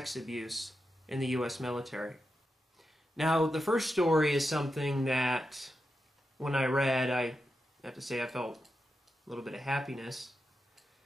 abuse in the U.S. military. Now, the first story is something that, when I read, I have to say I felt a little bit of happiness,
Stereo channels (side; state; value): both; normal; correlation 0.88